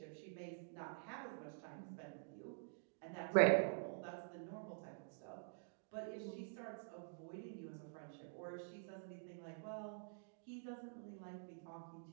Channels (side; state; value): left; silent; digital silence